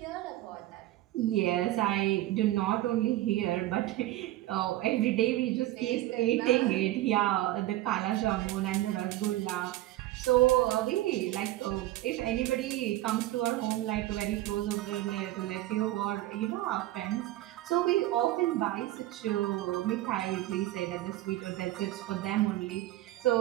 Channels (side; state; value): left; quieter; 16.0 dB